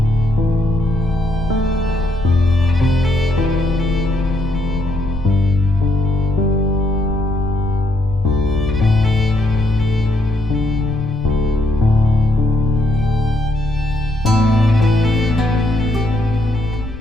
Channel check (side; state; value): left; noise; rumble, 10 dB below the sound